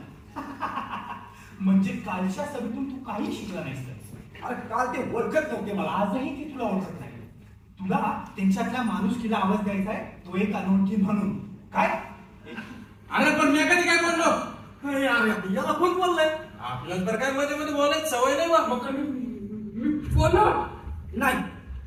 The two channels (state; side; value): identical; both; correlation 1.00